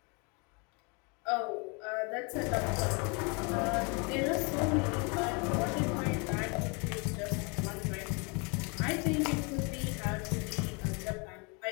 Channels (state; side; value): quieter; right; 32.4 dB